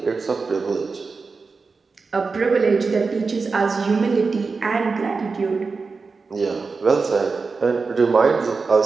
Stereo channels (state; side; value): quieter; left; 4.5 dB